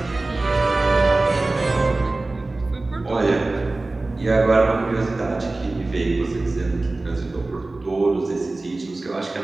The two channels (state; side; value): quieter; left; 3.1 dB